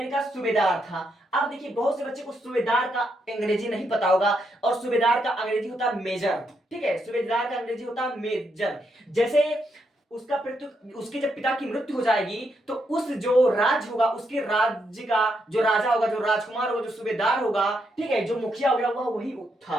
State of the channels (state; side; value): normal; both; correlation 0.79